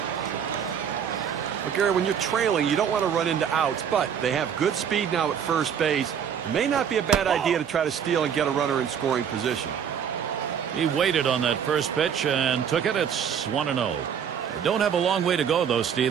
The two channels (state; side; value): quieter; left; 8.0 dB